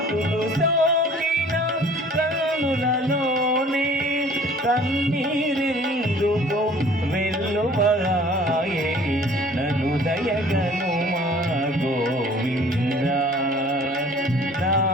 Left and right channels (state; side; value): normal; both; correlation 0.51